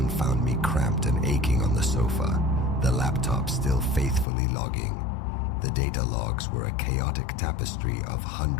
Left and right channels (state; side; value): drops out; right; at 4.2 s